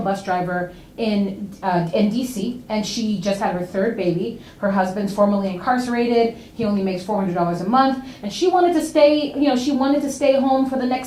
driver in DC, and she just had her third baby. Her husband's formerly incarcerated. He only makes $400 a month, and she wanted to stay. You know, she wanted to stay home for the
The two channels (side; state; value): both; identical; correlation 1.00